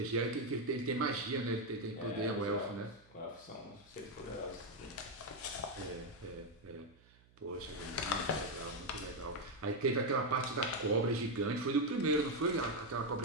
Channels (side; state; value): right; noise; hum, 28 dB below the sound